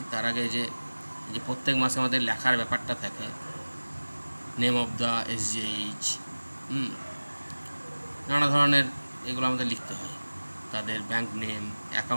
তার আগে যে প্রত্যেক মাসে আমাদের লেখার ব্যাপারটা থাকে, নেম অফ দ্য SGH, নানা ধরনের এগুলো আমাদের লিখতে হয়, তাদের ব্যাংক নেম,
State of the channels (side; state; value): both; inverted; correlation -1.00